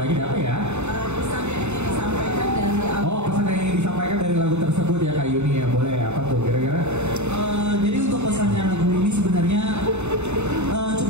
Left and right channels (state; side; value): late; left; 0.82 ms